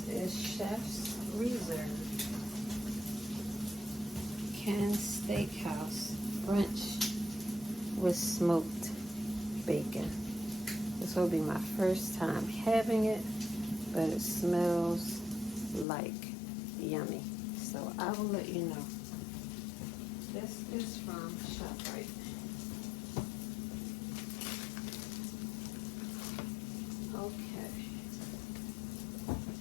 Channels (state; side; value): drops out; right; at 15.9 s